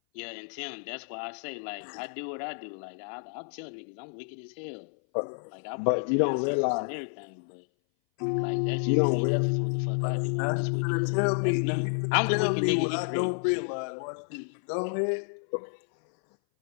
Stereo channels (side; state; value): right; silent; 58 dB below the other